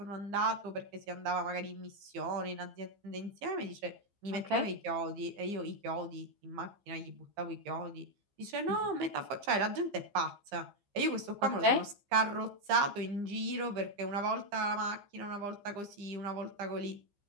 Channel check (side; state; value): left; late; 15 ms